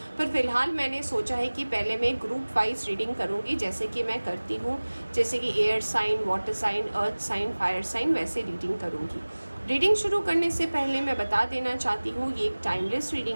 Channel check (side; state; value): both; inverted; correlation -1.00